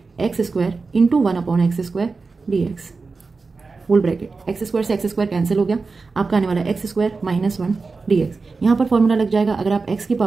x² into 1 upon x² dx whole bracket. x² से x² कैंसिल हो गया, आपका आने वाला है x² माइनस 1 dx। यहाँ पर फॉर्मूला लग जाएगा, अगर आप x की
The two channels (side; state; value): left; quieter; 4.2 dB